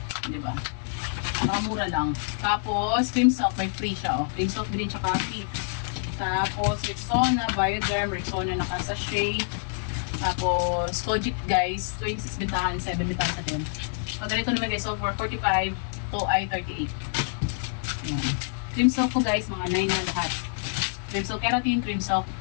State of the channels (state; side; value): silent; right; digital silence